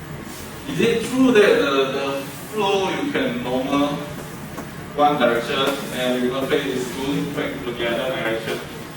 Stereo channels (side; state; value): both; identical; correlation 1.00